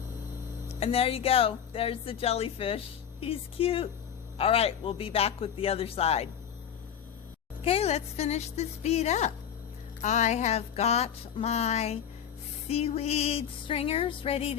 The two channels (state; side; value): quieter; right; 8.8 dB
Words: And there you go. There's the jellyfish. He's cute. All right, we'll be back with the other side. Okay, let's finish this bead up. I have got my seaweed stringers ready